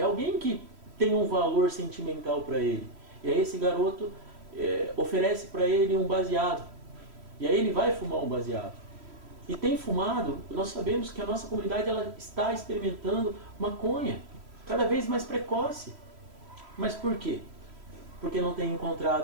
alguém que tem um valor sentimental para ele. E aí esse garoto oferece para ele um baseado. E aí ele vai fumar um baseado. E tem fumado, nós sabemos que a nossa comunidade ela está experimentando maconha, cada vez mais precoce. Mas por quê? Porque não tem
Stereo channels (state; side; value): late; left; 3.1 ms